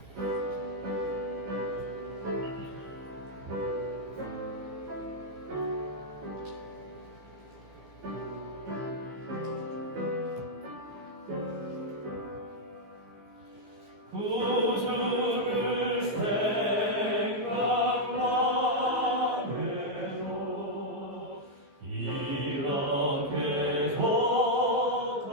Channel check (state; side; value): late; left; 15 ms